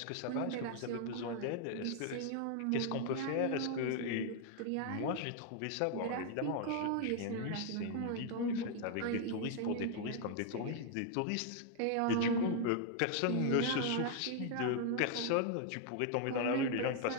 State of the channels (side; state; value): both; different; correlation 0.00